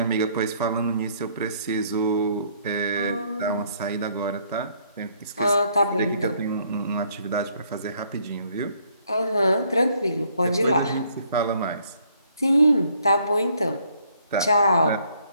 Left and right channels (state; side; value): inverted; both; correlation -0.66